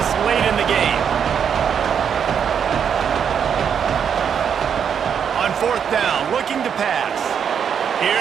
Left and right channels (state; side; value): quieter; left; 7.7 dB